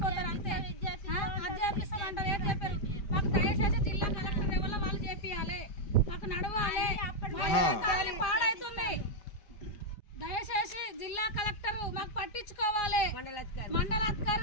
అంతే. అది చేపిస్తామంటారు, ఏది చెప్పారు. మాకు దయచేసి జిల్లా కలెక్టర్ వల్ల వాళ్ళు చేపియాలి, మాకు నడవాలి, పాడైతుంది. దయచేసి జిల్లా కలెక్టర్ మాకు పట్టించుకోవాలి,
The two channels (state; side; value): late; right; 5.1 ms